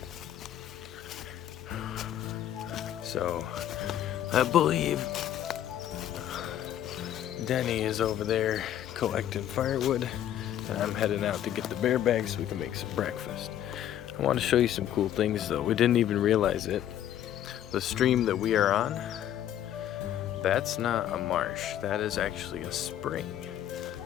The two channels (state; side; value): quieter; right; 11.2 dB